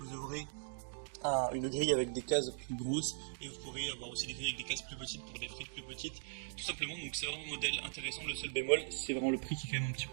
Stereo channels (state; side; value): silent; left; digital silence